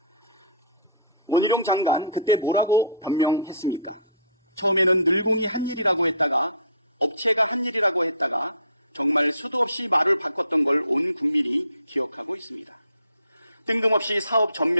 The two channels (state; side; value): inverted; both; correlation -0.50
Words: 원희룡 장관 그때 뭐라고 변명했습니까? 처음에는 늘공이 한 일이라고 했다가 업체가 한 일이라고 했다가 정말 수도 없이 말을 바꿨던 걸 온 국민이 기억하고 있습니다. 뜬금없이 사업